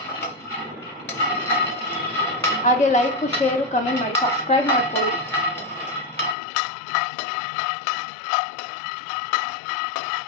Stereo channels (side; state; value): right; drops out; at 6.4 s